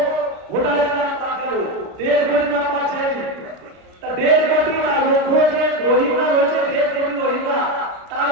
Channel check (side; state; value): left; late; 33 ms